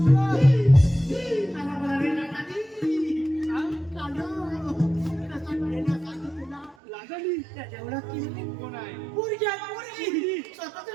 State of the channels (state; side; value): drops out; left; at 6.8 s